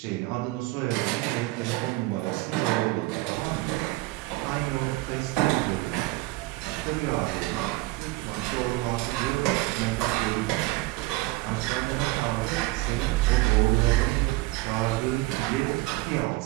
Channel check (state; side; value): quieter; left; 20.7 dB